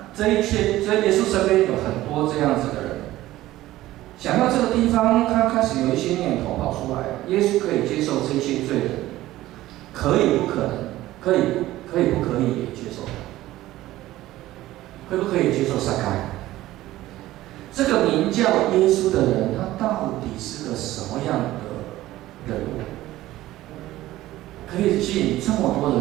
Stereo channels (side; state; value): left; quieter; 15.8 dB